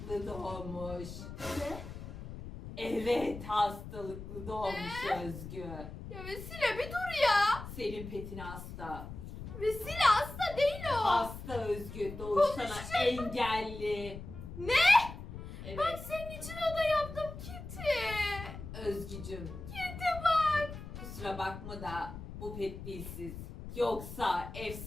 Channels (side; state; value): left; noise; rumble, 11 dB below the sound